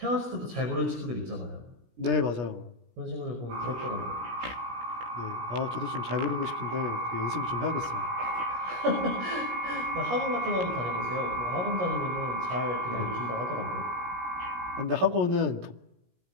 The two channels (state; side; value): late; left; 17 ms